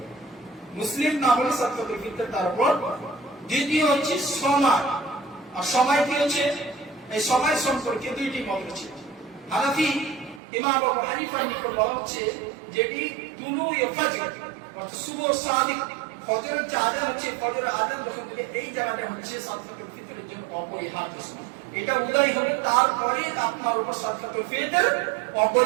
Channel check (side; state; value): left; drops out; at 10.4 s